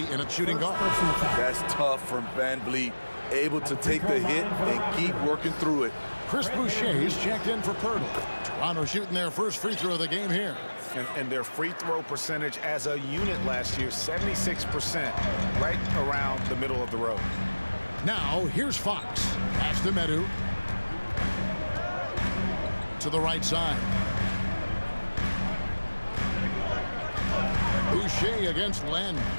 in a shooting guard. That's tough from VanVleet. Able to take the hit and keep working through it. Chris Boucher is checked in for Pirtle. Toronto shooting their first free throw of the game here. And their free throw percentage as a unit last year, 76%, right around the middle of the road. Now, here's Fox. Pass to Medu. To the right side. Boucher against Len.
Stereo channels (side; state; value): both; inverted; correlation -1.00